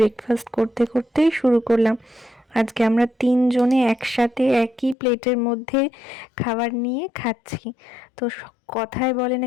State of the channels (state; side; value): drops out; right; at 5.0 s